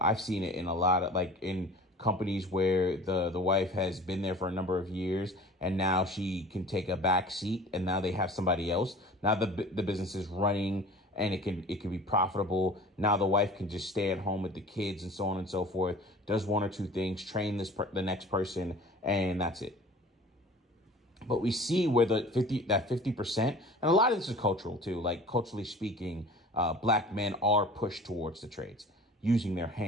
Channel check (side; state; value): both; normal; correlation 0.43